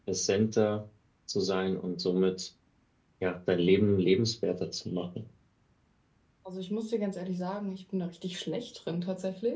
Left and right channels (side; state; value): both; identical; correlation 1.00